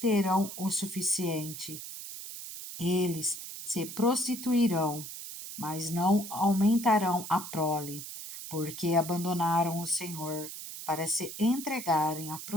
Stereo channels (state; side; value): noise; right; hiss, 10 dB below the sound